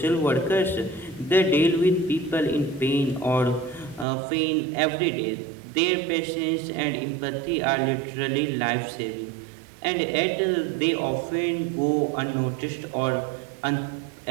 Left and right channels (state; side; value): drops out; left; at 4.0 s